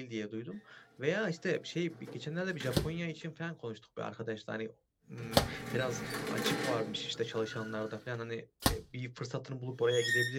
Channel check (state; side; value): identical; both; correlation 1.00